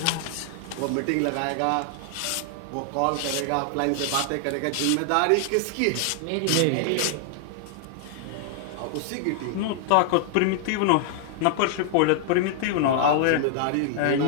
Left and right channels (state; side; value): different; both; correlation 0.00